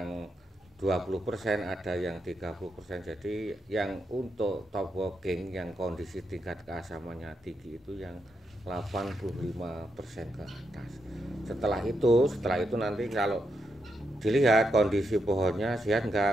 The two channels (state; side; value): normal; both; correlation 0.82